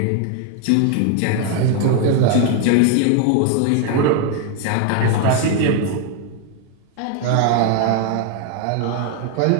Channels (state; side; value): different; both; correlation 0.00